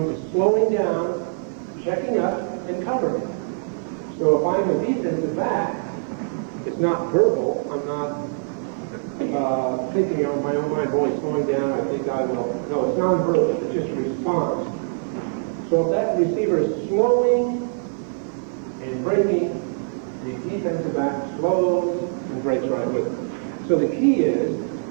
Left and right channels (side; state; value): left; silent; 60 dB below the other